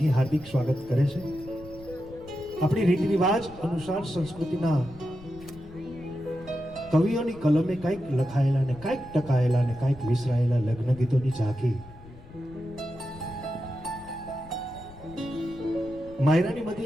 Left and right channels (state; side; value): noise; left; rumble, 19 dB below the sound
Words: હાર્દિક સ્વાગત કરે છે. આપણી રીત રિવાજ અનુસાર સંસ્કૃતિના કવિઓની કલમે કંઈક લખાયેલા ને કંઈક ટકાયેલા ને કંઈક વિસરાયેલા લગ્ન ગીતોની ઝાંખી માયરાની